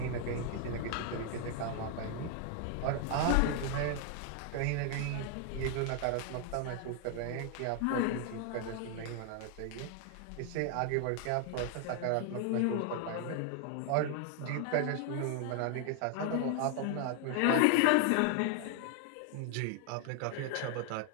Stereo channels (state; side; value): different; both; correlation 0.00